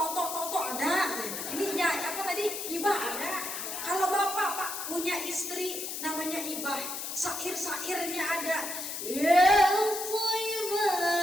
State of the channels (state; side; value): noise; left; hiss, 5 dB below the sound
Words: ada. Ini ya apa tadi? Ibah ada. Kalau bapak Pak punya istri namanya Ibah, sair-sairnya ada. Ya